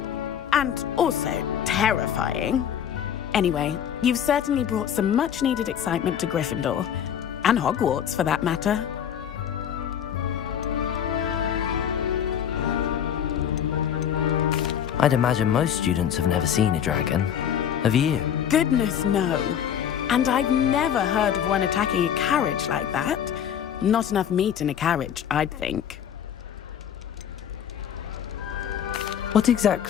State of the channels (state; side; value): quieter; right; 9.0 dB